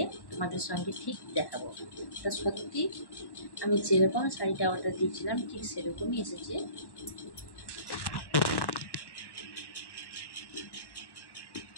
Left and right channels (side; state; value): right; late; 1.1 ms